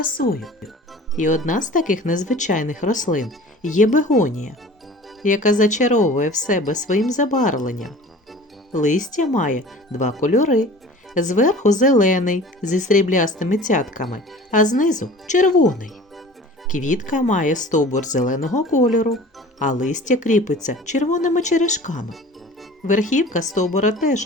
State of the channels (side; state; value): both; normal; correlation 0.43